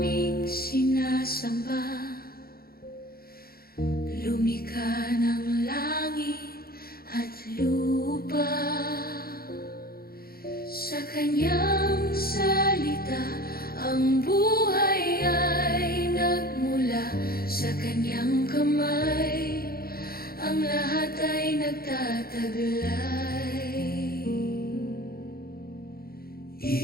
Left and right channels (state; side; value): late; right; 0.44 ms